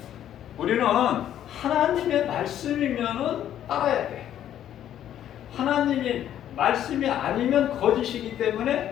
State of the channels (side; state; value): right; quieter; 10.9 dB